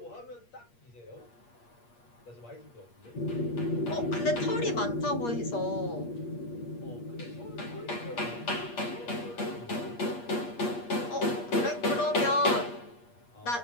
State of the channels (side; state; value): right; late; 8.5 ms